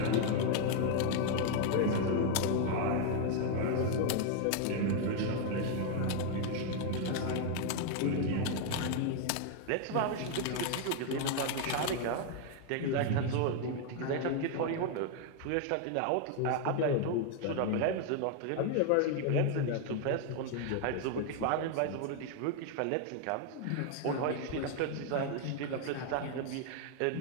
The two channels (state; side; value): different; both; correlation 0.00